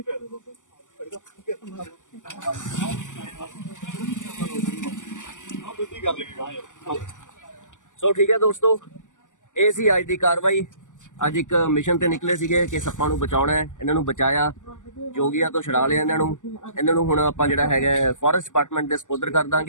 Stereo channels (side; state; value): right; late; 0.87 ms